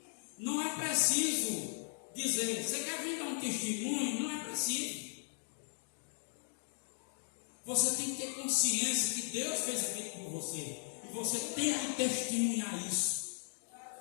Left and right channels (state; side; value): silent; right; digital silence